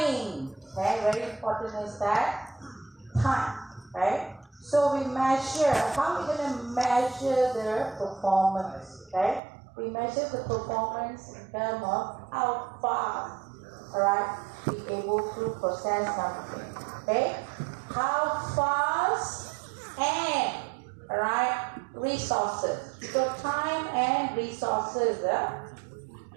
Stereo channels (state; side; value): drops out; left; at 9.4 s